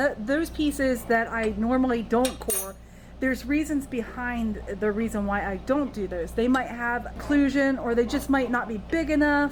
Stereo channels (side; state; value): both; identical; correlation 1.00